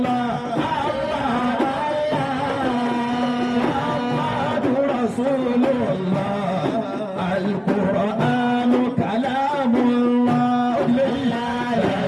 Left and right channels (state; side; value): identical; both; correlation 1.00